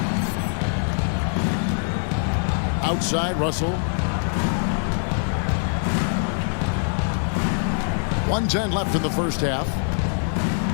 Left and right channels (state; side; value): silent; right; digital silence